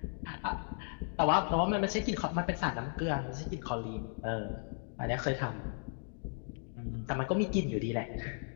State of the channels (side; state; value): right; silent; 54 dB below the other